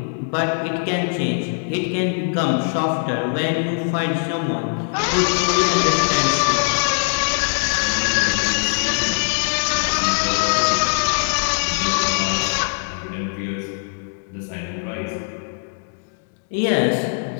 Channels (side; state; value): right; silent; digital silence